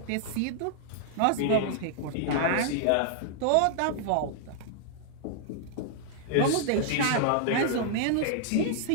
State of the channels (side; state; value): both; different; correlation -0.01